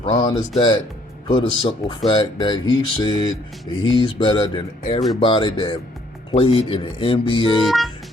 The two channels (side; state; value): both; normal; correlation 0.65